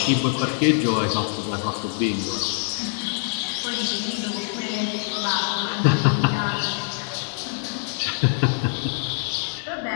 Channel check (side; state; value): right; silent; digital silence